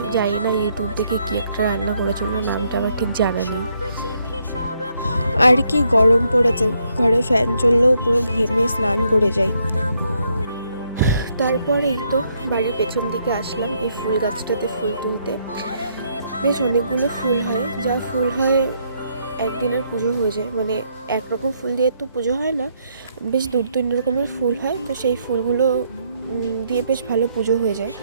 জানি না ইউটিউব থেকে কি একটা রান্না করেছিল, নামটা আমার ঠিক জানা নেই। আর কি গরম পড়েছে, ঘরে ফ্যান চললেও পুরো ঘেমে স্নান করে যাই। তারপরে এই তো বাড়ির পেছন দিকে আসলাম এই ফুল গাছটাতে ফুল তুলতে। বেশ অনেকগুলো ফুল হয়, যা ফুল হয় একদিনের পুজো হয়ে যায়, মানে একরকম ফুল দিয়ে তো পুজো হয় না, বেশ 2-3 রকমের ফুল হয়, তো সেই ফুলগুলো দিয়ে বেশ ভালো পুজো হয়ে যায়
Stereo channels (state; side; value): inverted; both; correlation -0.74